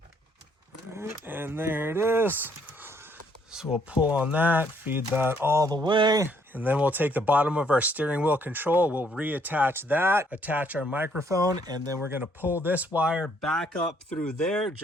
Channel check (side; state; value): both; normal; correlation 0.67